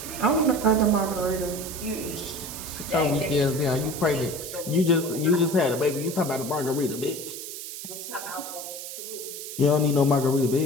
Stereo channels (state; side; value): noise; right; hiss, 9 dB below the sound